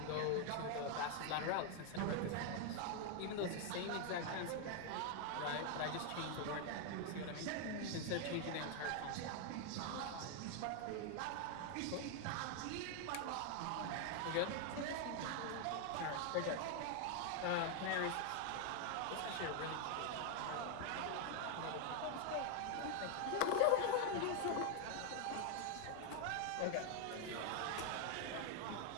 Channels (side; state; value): both; different; correlation 0.00